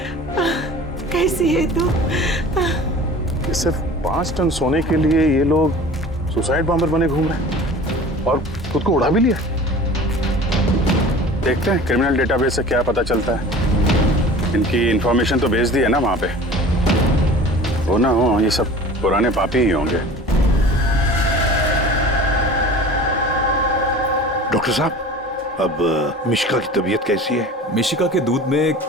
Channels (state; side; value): normal; both; correlation 0.41